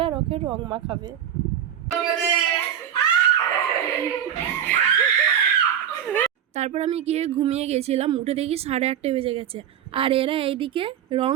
আর ওকে রং মাখাবে। তারপর আমি গিয়ে ঘুমিয়ে গেছিলাম, উঠে দেখি 8:30 বেজে গেছে। আর এরা এইদিকে রং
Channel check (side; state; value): left; quieter; 9.4 dB